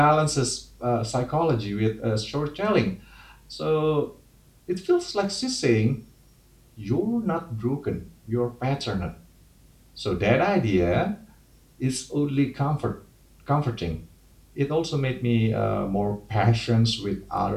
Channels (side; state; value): both; identical; correlation 1.00